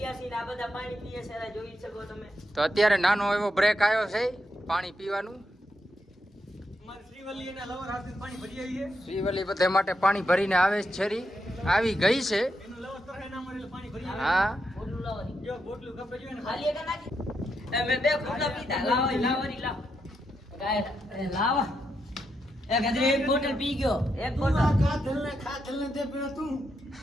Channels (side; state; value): both; normal; correlation 0.82